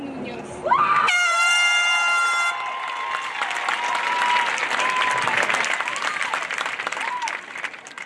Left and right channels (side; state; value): both; identical; correlation 1.00